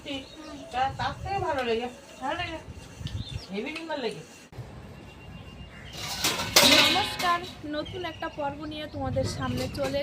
তার থেকে ভালো লেগে, ভালো লেগে হেভি সুন্দর লেগে। নমস্কার, নতুন একটা পর্ব নিয়ে তোমাদের সামনে চলে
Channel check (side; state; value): both; identical; correlation 1.00